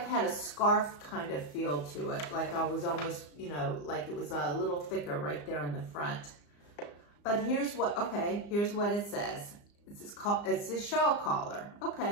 had a scarf kind of feel to it. Like I was almost, you know, like it was a little thicker right there in the front. But here's what it says. It's a shawl collar.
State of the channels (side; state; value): right; late; 34 ms